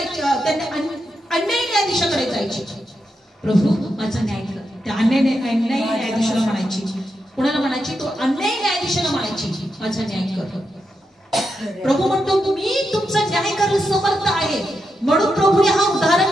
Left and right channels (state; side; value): normal; both; correlation 0.85